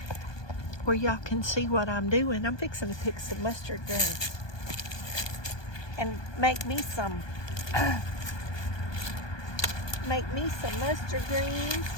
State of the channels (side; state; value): right; late; 1.2 ms